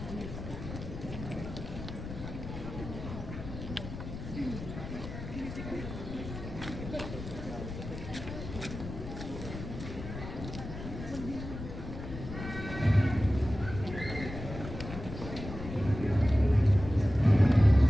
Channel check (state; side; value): noise; left; rumble, 9 dB below the sound